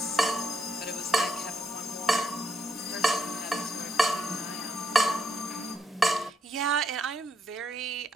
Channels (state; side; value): normal; both; correlation 0.77